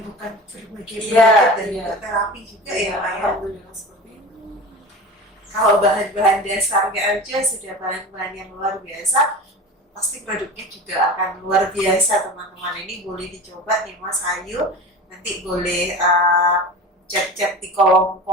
berbagai penyakit dan terapi juga ya Pak ya. Alhamdulillah seperti itu. Kalau bahan-bahan dasarnya aja sudah bahan-bahan yang luar biasa, pasti produknya juga akan luar biasa teman-teman. Ini boleh dicoba nih Mas Ayu, nanti boleh chat-chat di kolom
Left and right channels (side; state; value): both; normal; correlation 0.33